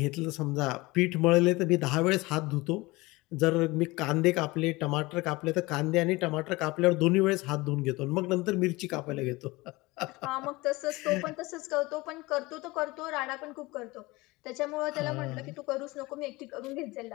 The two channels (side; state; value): right; quieter; 21.9 dB